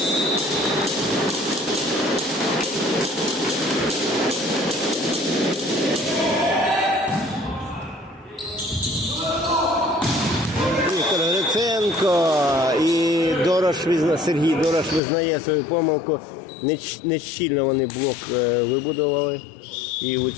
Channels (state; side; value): drops out; right; at 15.0 s